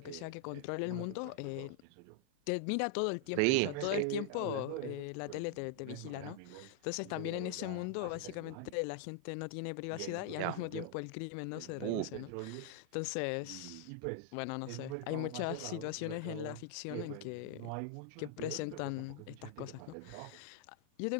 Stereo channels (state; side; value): different; both; correlation 0.00